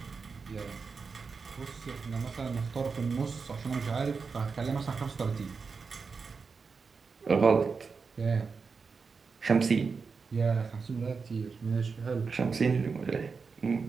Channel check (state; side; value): quieter; left; 5.0 dB